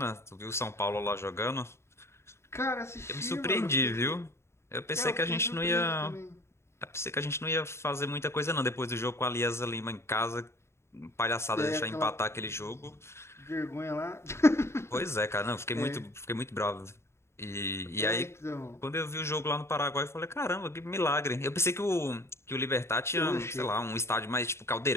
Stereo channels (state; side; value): late; right; 0.13 ms